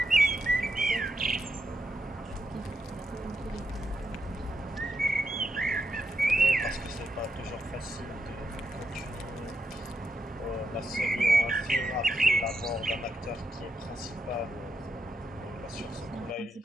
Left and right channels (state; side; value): normal; both; correlation 0.83